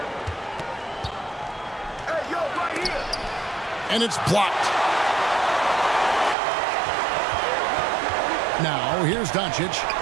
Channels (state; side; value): drops out; left; at 6.4 s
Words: And it's blocked. Now here's Doncic.